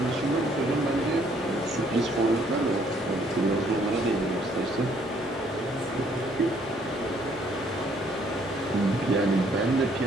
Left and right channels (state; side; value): noise; right; rumble, 24 dB below the sound